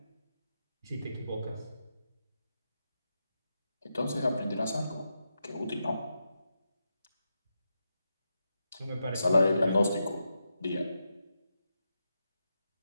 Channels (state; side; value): inverted; both; correlation -0.86